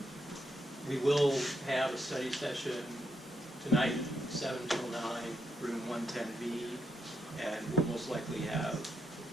we will have a study session tonight, 7 till 9, room 110B, and we'll most likely have,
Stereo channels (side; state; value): both; normal; correlation 0.81